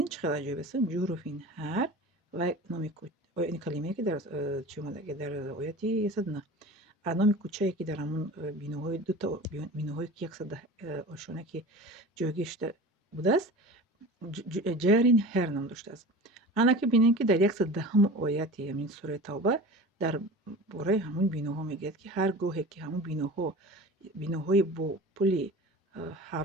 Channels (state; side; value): normal; both; correlation 0.36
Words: چقدر عجیب است. جروفین هر و نام کوچه این کلمه که در چی اومده که در آیت 109 نام کوچه‌ای که در همون بینوهای دو تا بینوهایی که 110 آشانه که جایگشته بوده است جارین هر نام داشته است. انا که بینید که در 110 آیت همین سوره توبه در باره همون بینوها میگه که هر گوهی که همون بینوهای با پولی